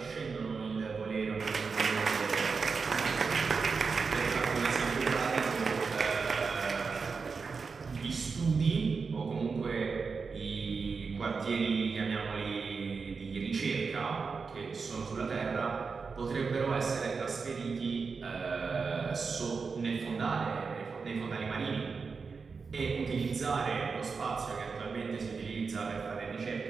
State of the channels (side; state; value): left; quieter; 5.0 dB